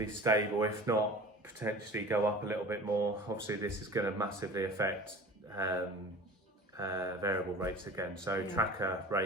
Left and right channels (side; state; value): both; normal; correlation 0.40